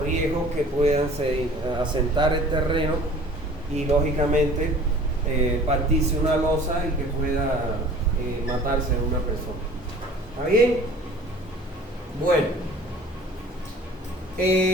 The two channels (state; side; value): normal; both; correlation 0.48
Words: riesgos que puedan asentar el terreno y lógicamente partirse una losa y que pueda matarse una persona. ¿Está bien? Bueno,